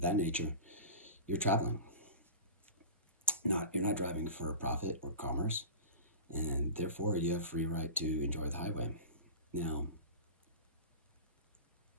nature, you're traveling. You're not driving for profit or commerce, and therefore you have free right to enjoy the highway. Now,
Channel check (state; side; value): inverted; both; correlation -0.32